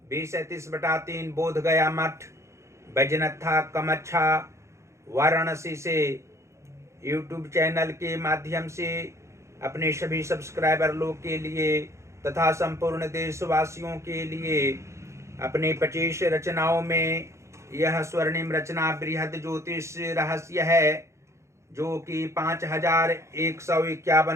20:33/3 बोध गया मठ, बैजनाथा कमच्छा, वाराणसी से यूट्यूब चैनल के माध्यम से अपने सभी सब्सक्राइबर लोग के लिए तथा संपूर्ण देशवासियों के लिए अपने 25 रचनाओं में यह स्वर्णिम रचना बृहद ज्योतिष रहस्य है, जो कि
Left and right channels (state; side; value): late; left; 0.14 ms